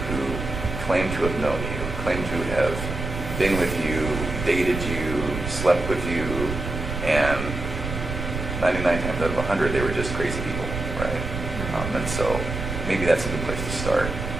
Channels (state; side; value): noise; right; rumble, 5 dB below the sound